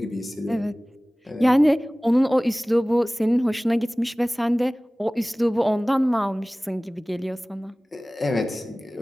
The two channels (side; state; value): both; normal; correlation 0.98